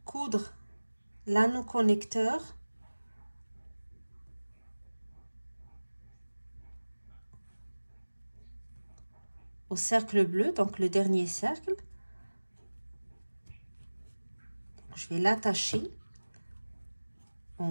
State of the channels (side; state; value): both; inverted; correlation -1.00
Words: coudre l'anneau connecteur au cercle bleu, donc le dernier cercle. Je vais l'attacher